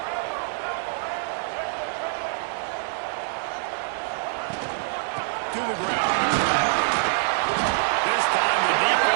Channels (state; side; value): silent; left; 61 dB below the other